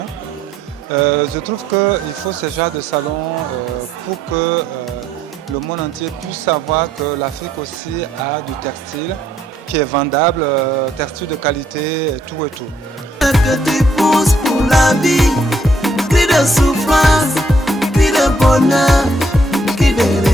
Je trouve qu'il faut ce genre de salon pour que le monde entier puisse savoir que l'Afrique aussi a du textile qui est vendable, textile de qualité et tout et tout. Que tu pousses pour la vie, cri de souffrance, cri de bonheur, cri de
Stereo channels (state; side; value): normal; both; correlation 0.70